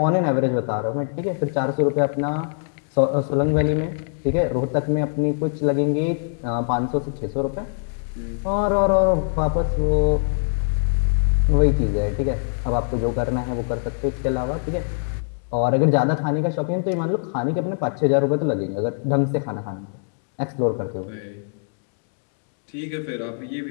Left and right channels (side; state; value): right; silent; digital silence